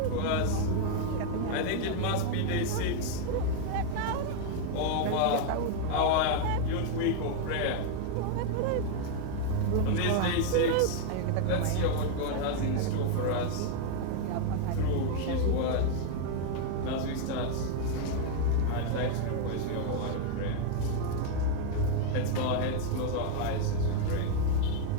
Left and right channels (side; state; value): both; different; correlation 0.00